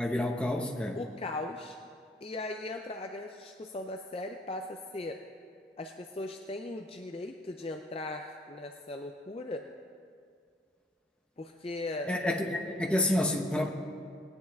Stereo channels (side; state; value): both; normal; correlation 0.62